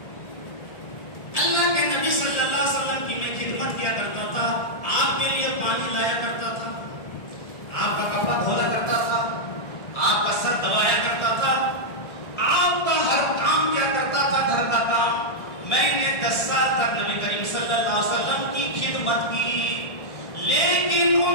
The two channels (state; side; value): late; right; 1.8 ms